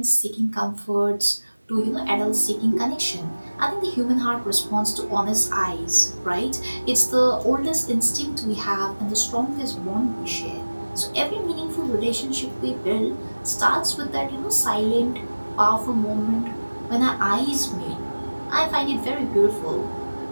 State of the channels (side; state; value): both; inverted; correlation -1.00